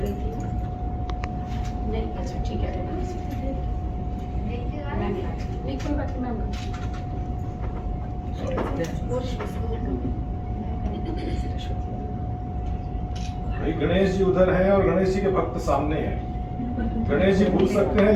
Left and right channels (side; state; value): both; identical; correlation 1.00